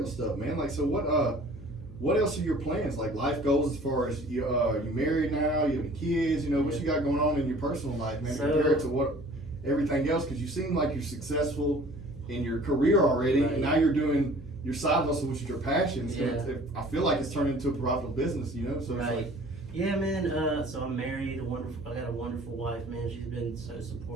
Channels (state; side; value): noise; left; hum, 19 dB below the sound